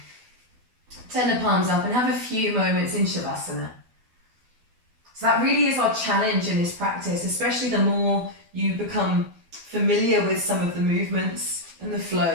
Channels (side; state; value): left; late; 12 ms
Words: Turn the palms up and have a few moments in Shavasana. So that really is our challenge in this practice, especially the more you become familiar with some of the movements and the